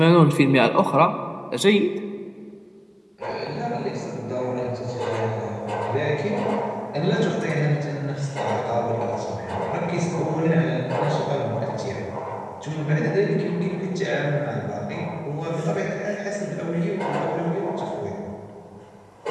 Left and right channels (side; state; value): both; identical; correlation 1.00